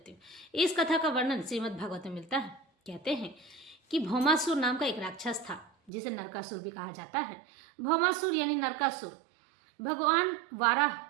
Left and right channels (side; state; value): left; drops out; at 5.9 s